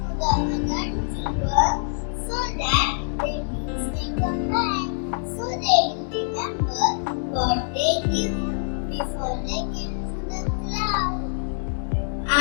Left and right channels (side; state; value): right; silent; digital silence